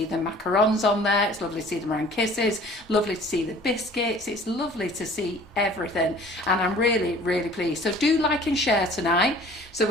the macarons on there. It's lovely to see the meringue kisses. Lovely to see the biscuits. It's lovely to see everything. And I'm really, really pleased. So do like and share tonight. So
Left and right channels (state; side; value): normal; both; correlation 0.49